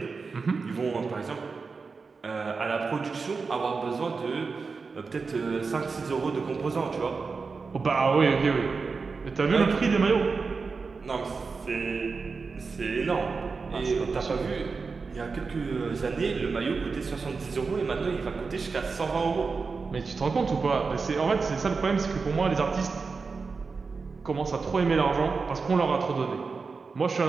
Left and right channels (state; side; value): quieter; left; 4.7 dB